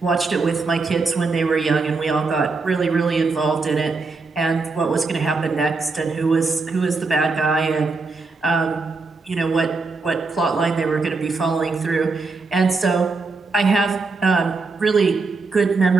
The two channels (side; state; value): left; quieter; 4.0 dB